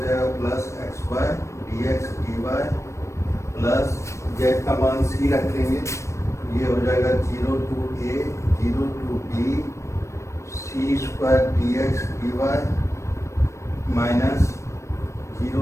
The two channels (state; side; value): late; right; 0.14 ms